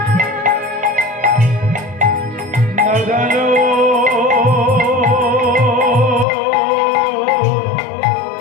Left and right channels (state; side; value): drops out; right; at 6.2 s